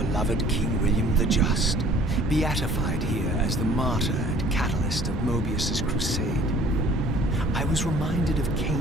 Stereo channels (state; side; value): normal; both; correlation 0.53